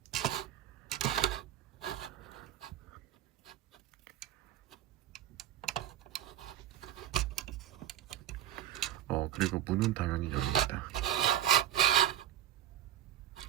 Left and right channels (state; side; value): quieter; left; 11.6 dB